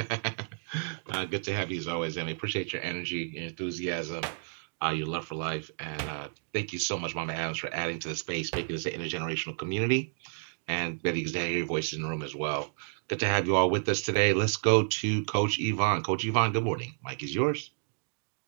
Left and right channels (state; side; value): silent; left; 57 dB below the other